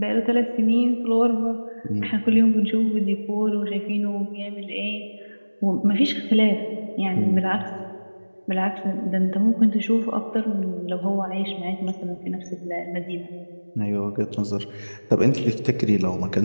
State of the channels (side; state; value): both; inverted; correlation -1.00